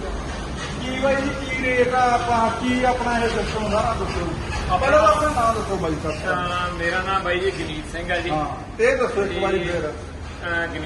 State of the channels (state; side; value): identical; both; correlation 1.00